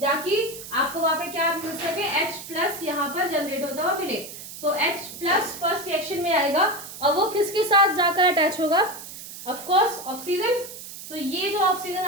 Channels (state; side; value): noise; right; hiss, 12 dB below the sound